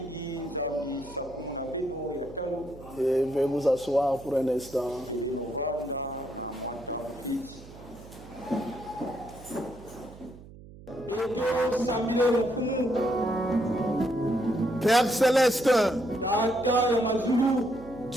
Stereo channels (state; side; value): noise; right; hum, 18 dB below the sound